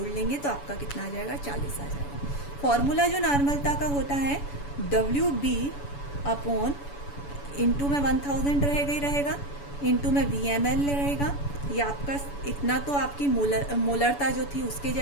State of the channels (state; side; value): late; right; 7.0 ms